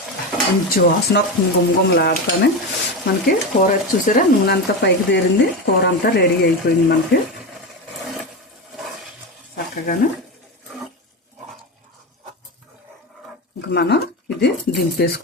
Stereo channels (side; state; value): both; normal; correlation 0.18